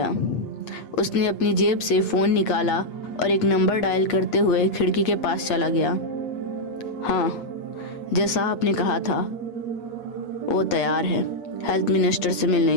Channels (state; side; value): late; right; 8.4 ms